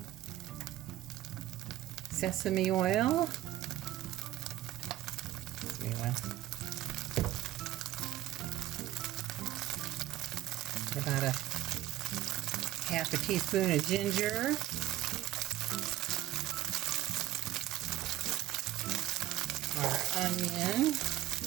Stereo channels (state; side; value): quieter; left; 15.2 dB